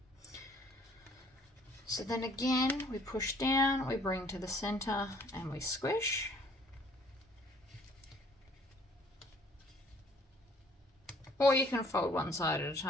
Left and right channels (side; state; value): both; normal; correlation 0.59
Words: So then again, we push down, we bring to the center, and we squish. Or you can fold one side at a